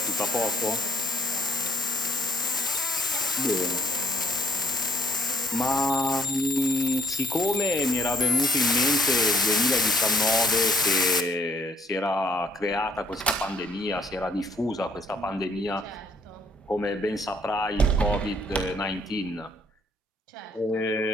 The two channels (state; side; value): normal; both; correlation 0.67